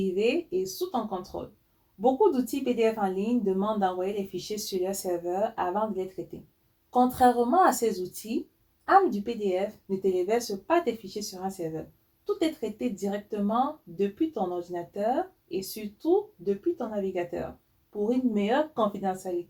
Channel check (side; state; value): both; identical; correlation 1.00